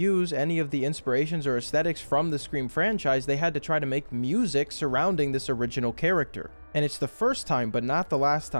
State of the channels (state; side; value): inverted; both; correlation -1.00